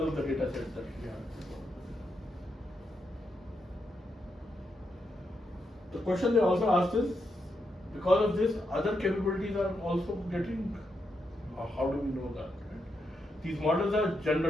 of the data set that we have. The question they also asked is, because of this, other capabilities are also getting, how do we know that? Right? These models are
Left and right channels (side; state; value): both; normal; correlation 0.83